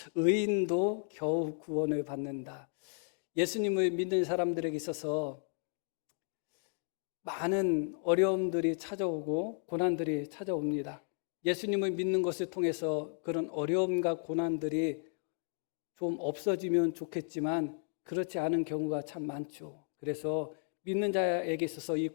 의인도 겨우 구원을 받는다. 예수님을 믿는 사람들에게 있어서 많은 어려움들이 찾아오고 고난들이 찾아옵니다. 예수님을 믿는 것을 통해서 그런 어려움과 고난들이 좀 없어지면 좋겠지만 그렇지 않은 경우가 참 많죠. 그래서 믿는 자에게 있어서 이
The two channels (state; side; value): silent; right; 55 dB below the other